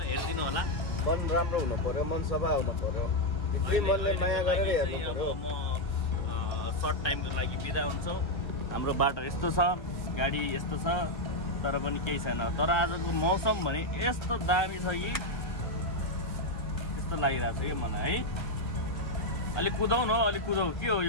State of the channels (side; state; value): right; late; 1.3 ms